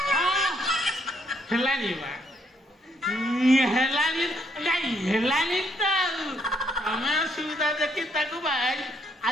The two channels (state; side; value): normal; both; correlation 0.71